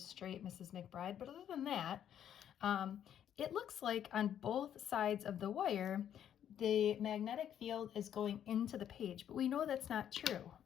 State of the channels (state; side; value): quieter; right; 9.9 dB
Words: Mrs. McBride, but other than that, it looks like on both sides of the wire, the magnetic field is going into the page, but we know that's not true,